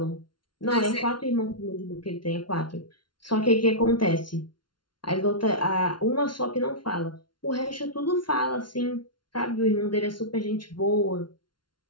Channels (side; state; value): right; late; 0.71 ms